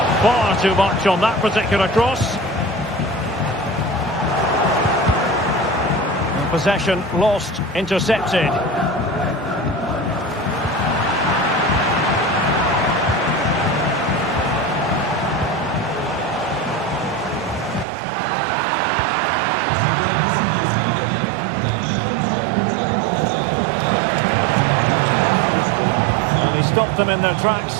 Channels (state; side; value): drops out; left; at 17.9 s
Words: far too much on that particular cross. And possession lost, intercepted. Stopped them in their